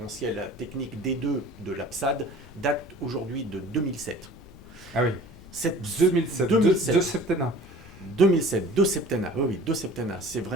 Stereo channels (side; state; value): left; noise; rumble, 20 dB below the sound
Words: technique D2 de l'APSAD, date aujourd'hui de 2007. Ah oui, 2007. De septennat. 2007, deux septennats, oui, deux septennats, c'est